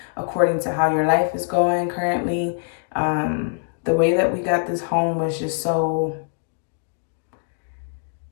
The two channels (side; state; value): right; silent; digital silence